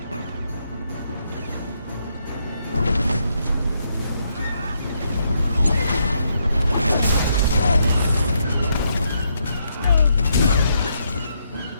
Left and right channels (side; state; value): both; inverted; correlation -0.77